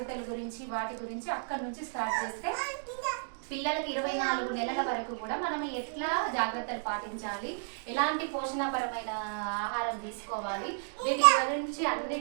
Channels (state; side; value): silent; left; digital silence